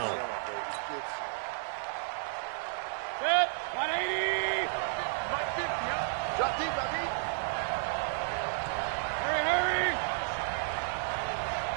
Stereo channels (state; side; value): silent; left; digital silence